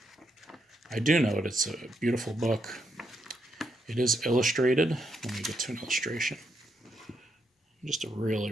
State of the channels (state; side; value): normal; both; correlation 0.80